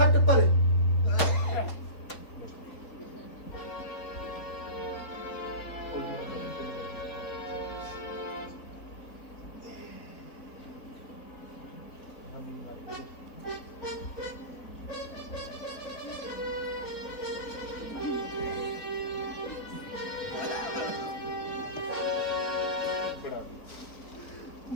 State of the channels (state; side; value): late; right; 4.4 ms